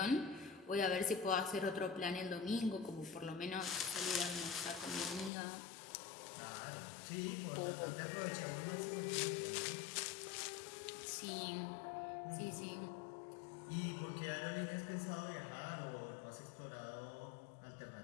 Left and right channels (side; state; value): right; drops out; at 5.3 s